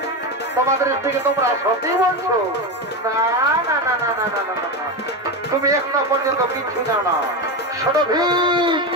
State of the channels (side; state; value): both; normal; correlation 0.16